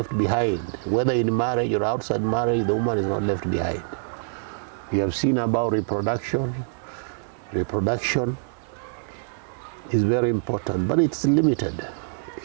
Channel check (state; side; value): silent; left; digital silence